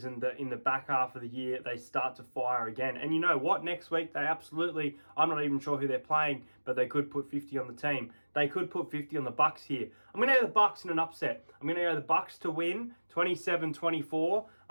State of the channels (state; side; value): inverted; both; correlation -1.00